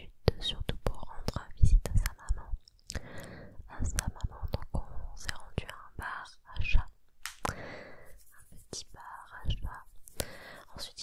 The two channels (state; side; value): identical; both; correlation 1.00